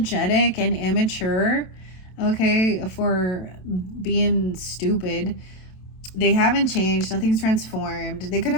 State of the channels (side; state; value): right; late; 27 ms